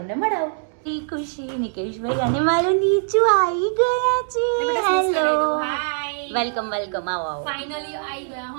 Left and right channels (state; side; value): silent; left; digital silence